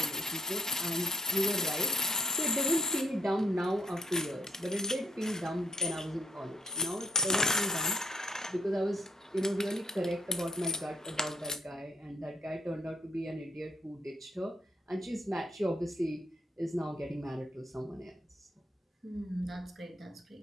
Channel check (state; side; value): normal; both; correlation 0.71